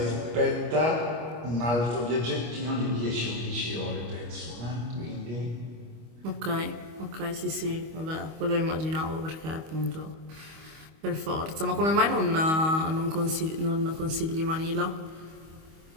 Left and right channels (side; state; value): left; late; 25 ms